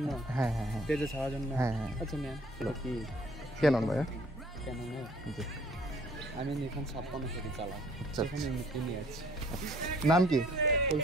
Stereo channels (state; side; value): normal; both; correlation 0.57